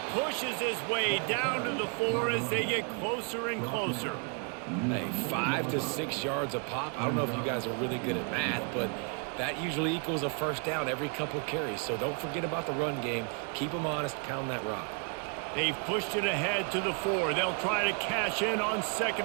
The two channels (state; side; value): quieter; left; 37.6 dB